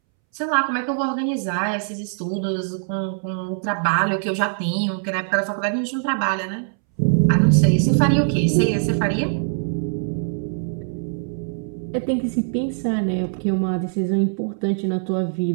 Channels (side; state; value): left; silent; 64 dB below the other